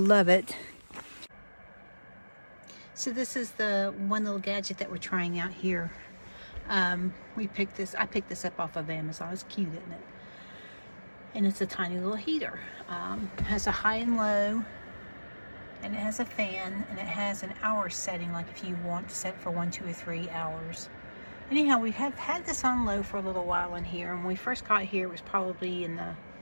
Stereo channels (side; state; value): both; inverted; correlation -1.00